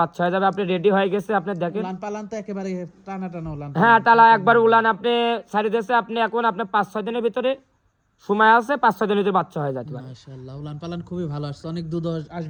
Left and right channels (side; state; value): both; identical; correlation 1.00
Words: বাচ্চা হয়ে যাবে। আপনি রেডি হয়ে গেছে আপনি দেখেন। উলান পালান তো একেবারে টানা টানা উলান। হ্যাঁ টালা একবার উলান আপনি ছাড়ি দিয়েছে। আপনি এখন আপনি 5-6 দিনের ভিতরে সময় আছে, 5-6 দিনের ভিতরে বাচ্চা হয়ে যাবে। মাশাআল্লাহ উলান পালান খুবই ভালো আসছে। অনেক দুধ